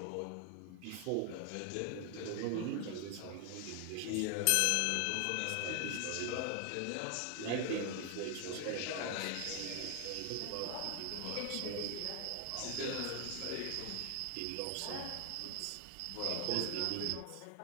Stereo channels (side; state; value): both; different; correlation 0.00